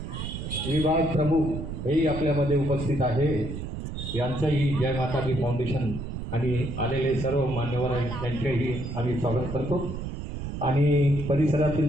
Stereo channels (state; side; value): noise; right; rumble, 6 dB below the sound